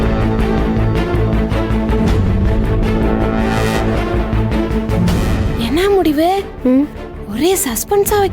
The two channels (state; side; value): identical; both; correlation 1.00